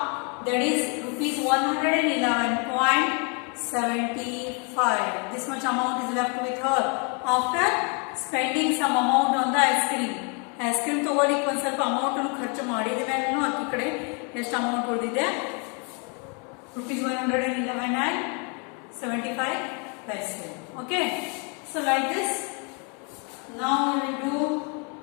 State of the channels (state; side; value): quieter; right; 35.7 dB